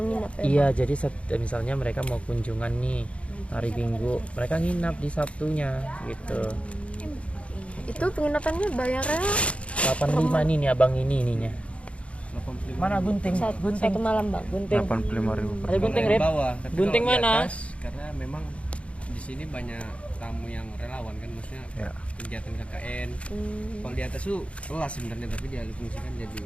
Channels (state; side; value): late; right; 0.062 ms